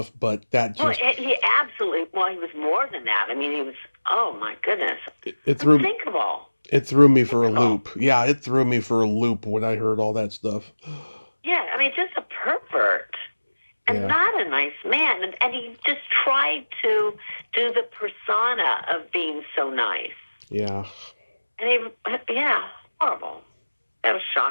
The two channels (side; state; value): both; inverted; correlation -1.00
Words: but that just... Well, he was more than that. I mean, he was, oh my goodness. Unthinkable. It threw me for a loop. Yeah, it threw me for a loop when I heard all that stuff. Yeah, I mean, just a pervert. And not a nice man. And he just tried to do the persona of being so nice. Yeah. And horrible. That was